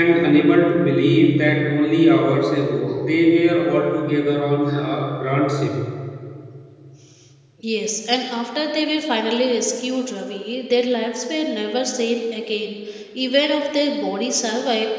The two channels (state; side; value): identical; both; correlation 1.00